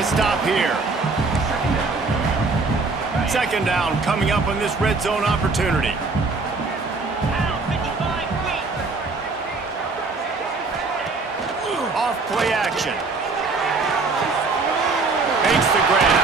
stop here. 2nd down coming up on this red zone opportunity. Off play action. Makes the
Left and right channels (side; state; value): left; quieter; 3.9 dB